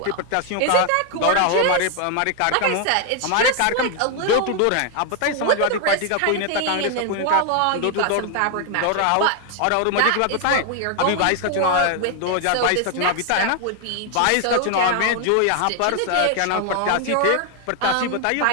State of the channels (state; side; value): different; both; correlation 0.00